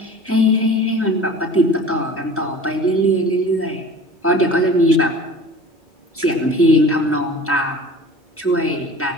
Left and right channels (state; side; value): normal; both; correlation 0.41